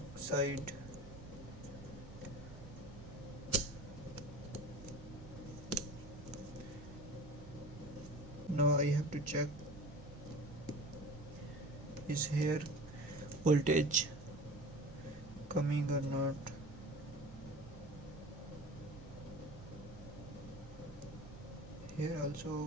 side. Now I have to check, is here voltage coming or not. Here also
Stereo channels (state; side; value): noise; right; hum, 17 dB below the sound